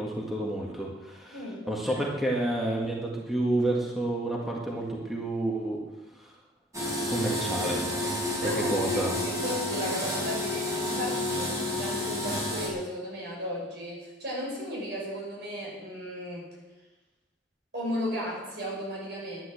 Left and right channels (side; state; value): both; normal; correlation 0.51